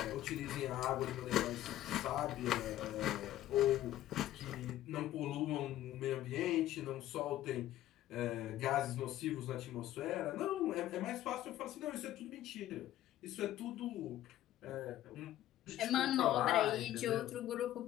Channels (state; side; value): quieter; right; 13.5 dB